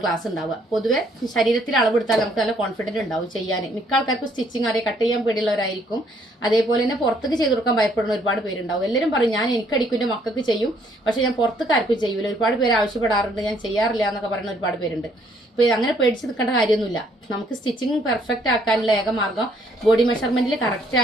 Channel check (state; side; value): normal; both; correlation 0.66